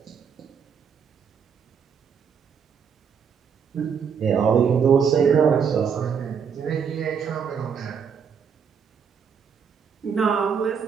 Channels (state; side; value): quieter; left; 6.8 dB